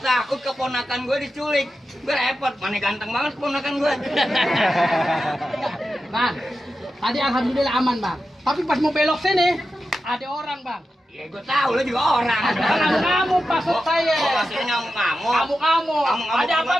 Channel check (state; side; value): normal; both; correlation 0.91